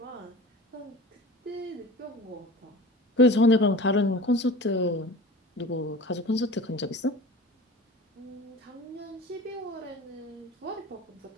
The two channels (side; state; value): both; normal; correlation 0.38